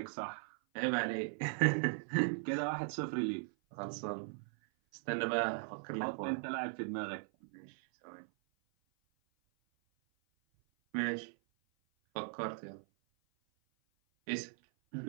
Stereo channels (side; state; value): left; silent; 52 dB below the other